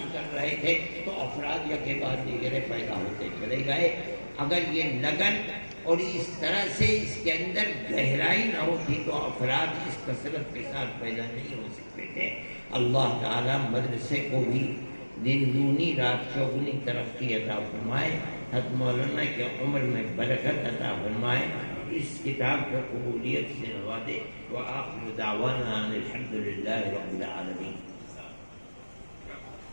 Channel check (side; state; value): both; inverted; correlation -1.00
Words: کر رہے تھے, تو افراد یا کے بعد دیگرے پیدا ہوتے چلے گئے. اگر یہ لگن اور اس طرح سے اس کے اندر گہرائی نہ ہوتی تو افراد اس کثرت کے ساتھ پیدا نہیں ہو سکتے تھے. اللہ تعالیٰ مدرسے کو بھی دن دونی رات چوگنی ترقی عطا فرمائے. حضرت مولانا کے عمر میں برکت عطا فرمائے. اس کتاب کو قبولیت سے نوازے. وآخر دعوانا ان الحمدللہ رب العالمین.